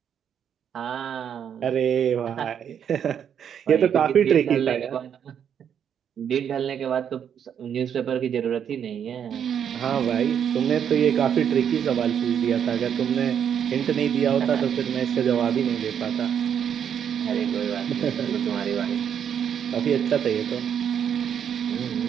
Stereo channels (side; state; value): left; quieter; 8.4 dB